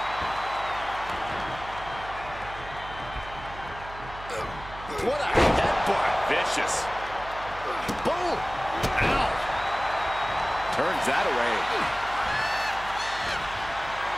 What a headbutt. Vicious. Boom! Ow! Turns that away.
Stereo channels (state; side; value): noise; right; hum, 15 dB below the sound